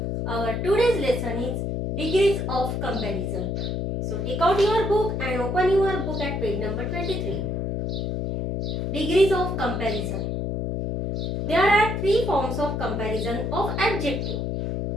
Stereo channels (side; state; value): left; noise; hum, 1 dB below the sound